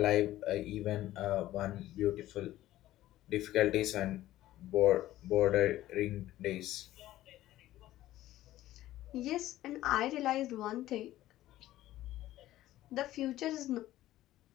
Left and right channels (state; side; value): quieter; right; 14.8 dB